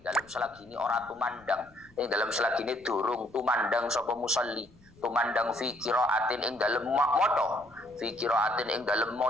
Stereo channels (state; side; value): noise; left; rumble, 27 dB below the sound